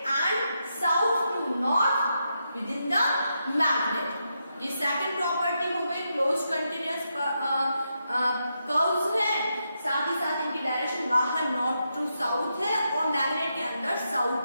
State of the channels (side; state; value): both; inverted; correlation -0.84